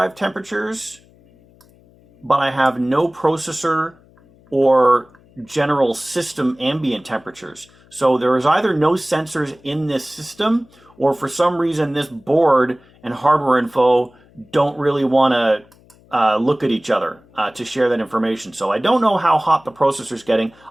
temperatures, but I have no processor or general system ambient temperatures. So there is either no sensors in this system, or for some reason this board and hardware info don't really want to look at each other to share that information. So I don't know how hot the processor's getting.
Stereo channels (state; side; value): noise; left; hum, 29 dB below the sound